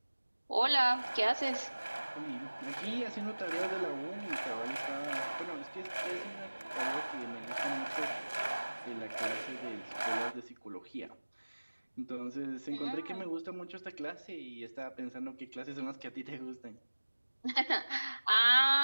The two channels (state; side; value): inverted; both; correlation -1.00